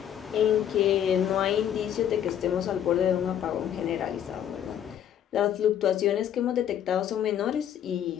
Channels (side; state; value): right; quieter; 10.0 dB